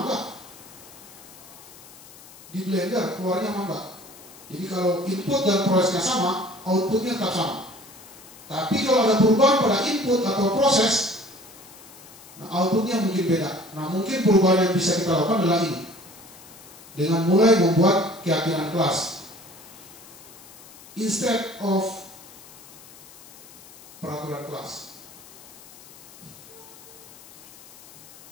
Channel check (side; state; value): left; noise; hiss, 20 dB below the sound